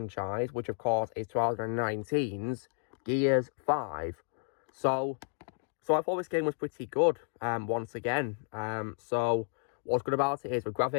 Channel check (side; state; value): right; silent; digital silence